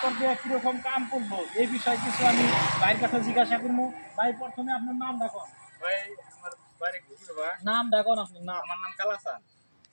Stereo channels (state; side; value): inverted; both; correlation -1.00